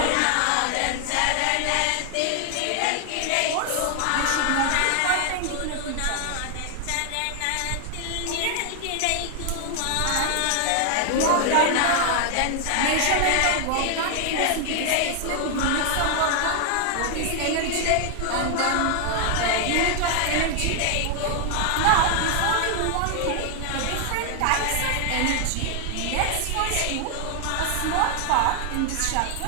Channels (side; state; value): both; different; correlation 0.00